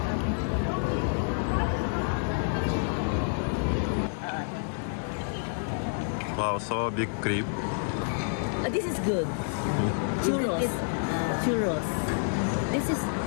Wow, so big creep. This is good. Churros. Churros. This is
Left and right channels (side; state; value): right; silent; 59 dB below the other